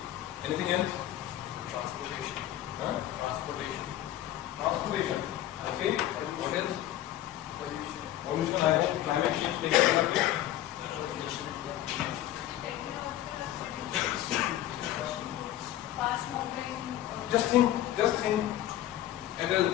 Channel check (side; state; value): right; quieter; 13.2 dB